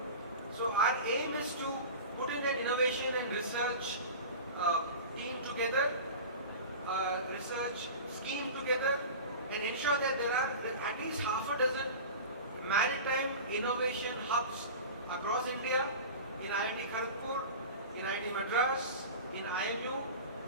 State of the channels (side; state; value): both; inverted; correlation -0.33